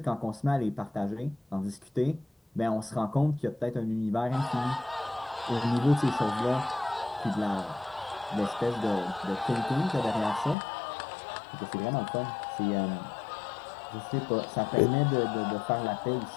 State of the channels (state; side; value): drops out; right; at 10.6 s